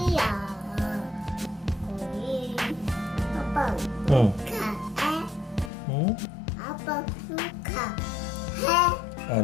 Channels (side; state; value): right; drops out; at 5.7 s